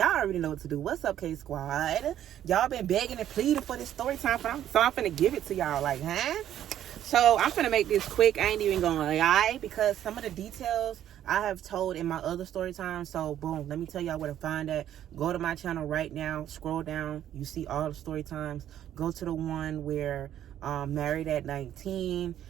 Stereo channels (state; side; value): quieter; left; 11.2 dB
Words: already know what to do. What's up, K Squad? Y'all been begging and pleading for this story time, so I'm finna give it to y'all. Like, huh? So I'm finna make this quick. I ain't even gonna lie, because some of the details I have told in my other story time. So boom, let me tell y'all where to find that. Go to my channel right now, scroll down, you see all the story times. Go to the one where married at 19.